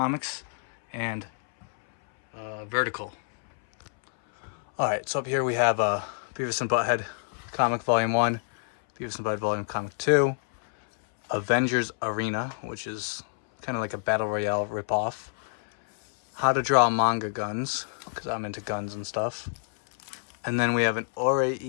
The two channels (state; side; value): silent; right; 60 dB below the other